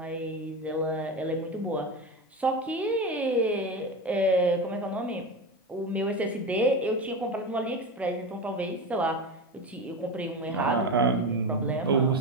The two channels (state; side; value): normal; both; correlation 0.21